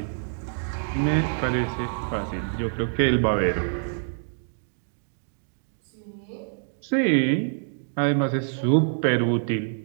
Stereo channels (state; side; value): silent; left; digital silence